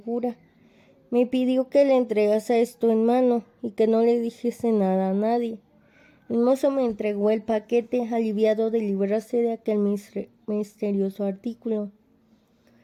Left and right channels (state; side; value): identical; both; correlation 1.00